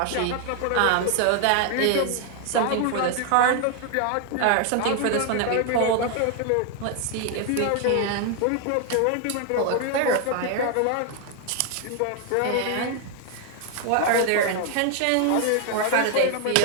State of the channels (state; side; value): different; both; correlation 0.01